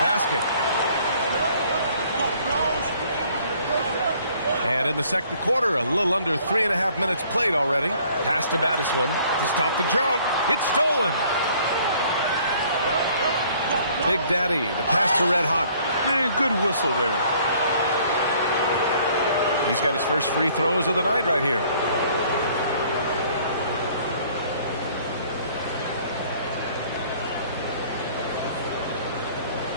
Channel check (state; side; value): inverted; both; correlation -0.58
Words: And in the second quarter, a little under 3.5 minutes played already. Pass to Battiswan to stop the drought. It's stolen. Big Daddy, the pass to Red Hot. Man, good whistle there. He's got his first free throws of the night right here.